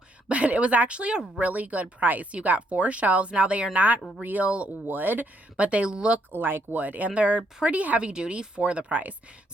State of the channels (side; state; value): both; normal; correlation 0.73